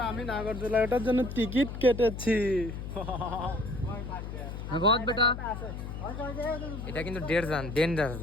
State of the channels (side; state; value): left; noise; hum, 7 dB below the sound